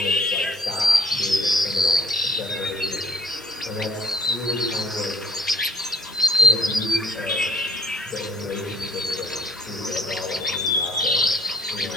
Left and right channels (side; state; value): left; noise; hiss, 22 dB below the sound